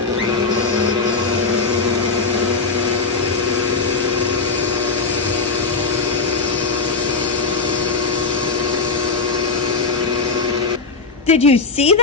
Did you see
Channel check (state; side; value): quieter; right; 4.3 dB